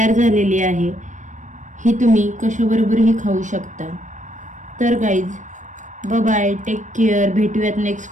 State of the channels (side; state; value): left; late; 0.36 ms